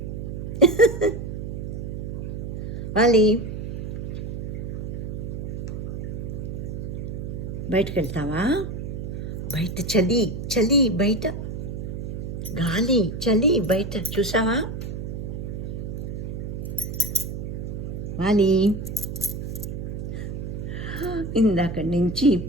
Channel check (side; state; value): right; noise; hum, 6 dB below the sound